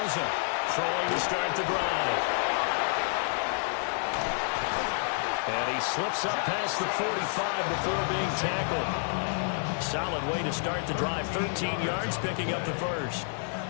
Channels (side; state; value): right; silent; 58 dB below the other